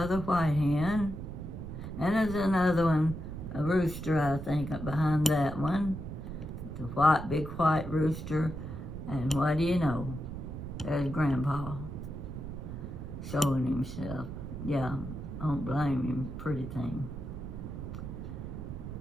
white hen. And there's another one, a rooster, I think, up behind that one. It's a big white rooster. And what do you know? There's Grandpa showing himself. Yeah, I don't blame him, pretty thing.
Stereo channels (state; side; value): noise; right; rumble, 8 dB below the sound